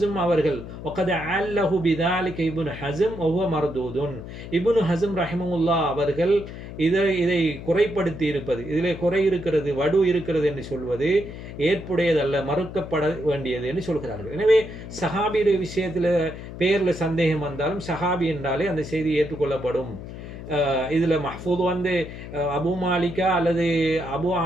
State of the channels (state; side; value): noise; left; hum, 11 dB below the sound